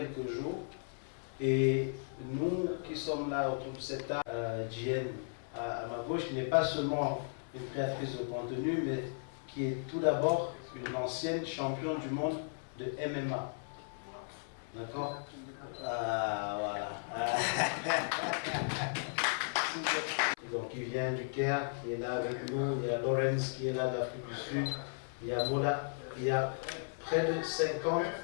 jours. Et nous qui sommes là autour de cette table, Jen à ma gauche, qui n'est pas seulement une créatrice de contenu, mais qui est tout d'abord une ancienne championne du monde de MMA. D'accord? Voilà. Donc il vient du Caire, qui est là avec nous, il y a Lawrence qui est là d'Afrique du Sud, il y a Mola, il y a près de 50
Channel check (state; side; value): silent; right; 54 dB below the other